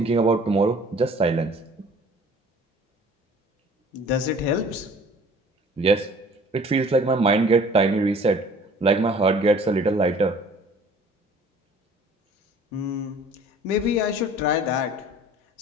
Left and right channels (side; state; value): both; normal; correlation 0.50